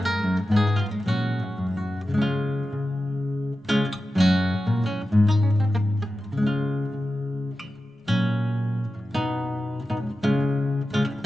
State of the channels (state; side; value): normal; both; correlation 0.92